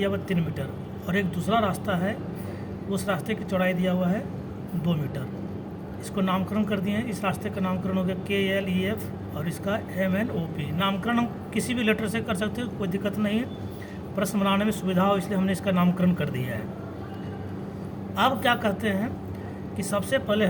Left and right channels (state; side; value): identical; both; correlation 1.00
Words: हुआ 3 मीटर, और एक दूसरा रास्ता है, उस रास्ते की चौड़ाई दिया हुआ है 2 मीटर। इसको नामकरण कर दिए हैं। इस रास्ते का नामकरण हो गया KLEF और इसका MNOP। नामकरण हम किसी भी लेटर से कर सकते हैं, कोई दिक्कत नहीं है। प्रश्न बनाने में सुविधा हो इसलिए हमने इसका नामकरण कर दिया है। अब क्या करते हैं कि सबसे पहले